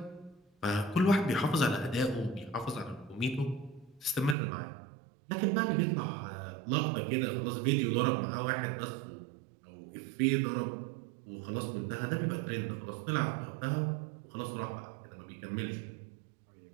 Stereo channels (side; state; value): left; drops out; at 4.4 s